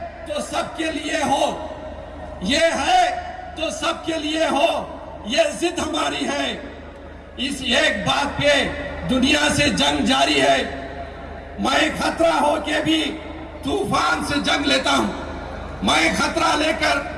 तो सबके लिए हो, ये है तो सबके लिए हो, ये जिद हमारी है। इस एक बात पे दुनिया से जंग जारी है। मैं खतरा हो के भी तूफान से जंग लेता हूं। मैं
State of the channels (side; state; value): both; identical; correlation 1.00